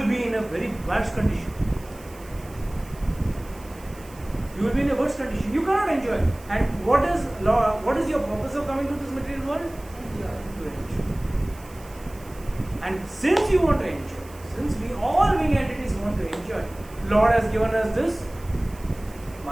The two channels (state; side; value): noise; right; hiss, 23 dB below the sound